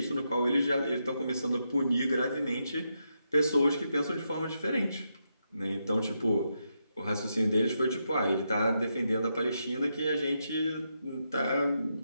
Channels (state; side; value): inverted; both; correlation -0.83